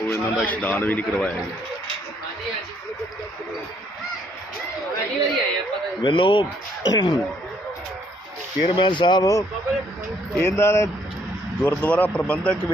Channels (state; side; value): normal; both; correlation 0.68